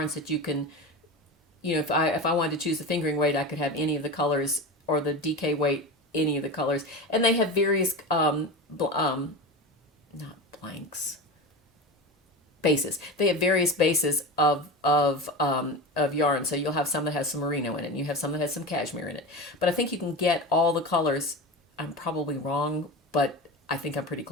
that you can, if I wanted to choose the fingering weight, I could have any of the colors, or the DK weight, any of the colors. And they have various not blanks, bases. They have various bases of yarn. So you'll have some that has some merino in it, and you have some that has some cashmere in it. But I think you can get all the colors. I'm probably wrong, but I think I'm pretty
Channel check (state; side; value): normal; both; correlation 0.27